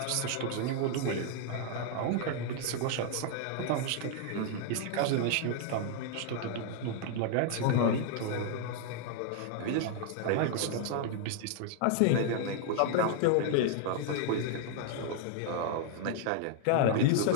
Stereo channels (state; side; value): different; both; correlation 0.00